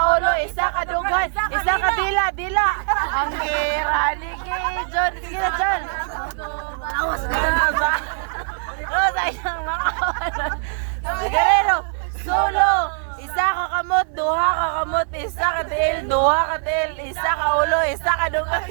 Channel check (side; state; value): left; silent; digital silence